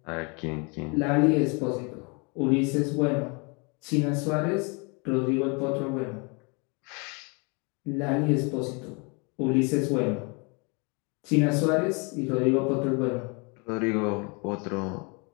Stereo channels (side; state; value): right; quieter; 31.8 dB